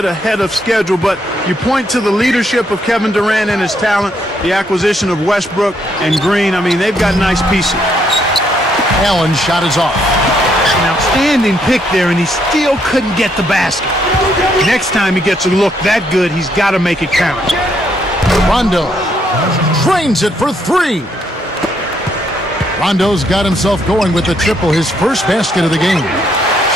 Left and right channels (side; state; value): both; normal; correlation 0.73